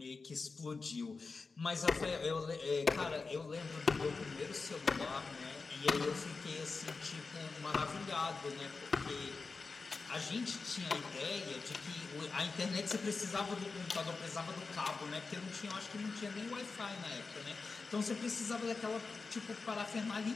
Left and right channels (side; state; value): right; quieter; 4.2 dB